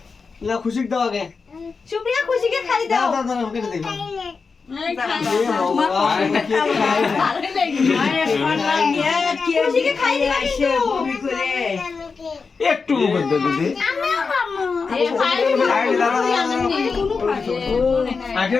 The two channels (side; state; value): right; quieter; 4.8 dB